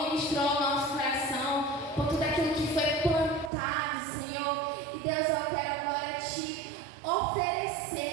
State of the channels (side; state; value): left; drops out; at 3.5 s